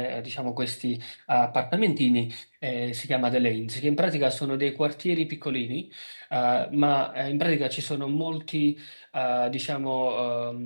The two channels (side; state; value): both; inverted; correlation -1.00